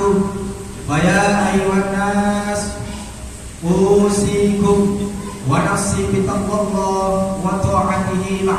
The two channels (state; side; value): identical; both; correlation 1.00